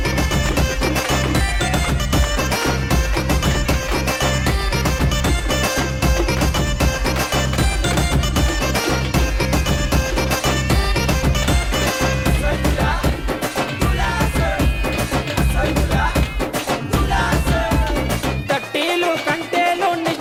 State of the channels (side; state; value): both; identical; correlation 1.00